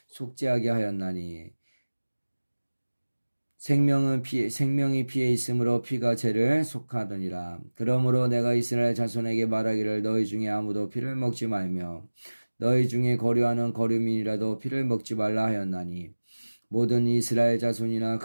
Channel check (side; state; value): both; inverted; correlation -1.00